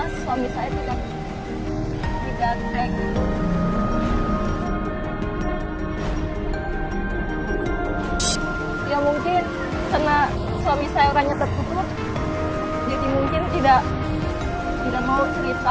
suami saya tidak baik. Ya mungkin karena suami saya orangnya tertutup, jadi mungkin tidak mau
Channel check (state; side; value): identical; both; correlation 1.00